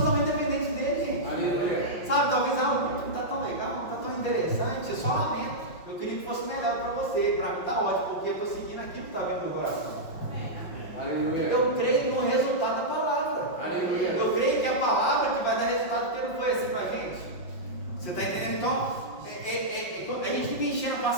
dependentes dele, gente. Aleluia. Sabe, talvez não está tão legal, não está tão interessante, eu só lamento. Eu queria que fosse melhor para você, para mim está ótimo, porque eu estou seguindo aquilo que está vendo no meu coração. Aleluia. Eu creio no resultado da palavra. Aleluia. Eu creio que é a palavra que vai dar resultado, porque não foi assim com a gente. Você está entendendo? Então, a gente fica enchendo a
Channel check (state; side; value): late; right; 5.6 ms